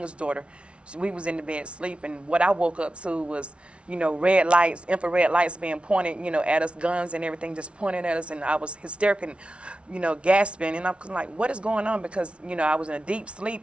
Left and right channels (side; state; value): left; late; 0.060 ms